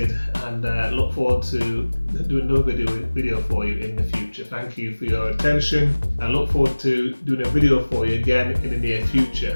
and look forward to doing another video for you in the future. Thank you for your attention. I look forward to doing a video for you again in the near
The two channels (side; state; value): both; inverted; correlation -1.00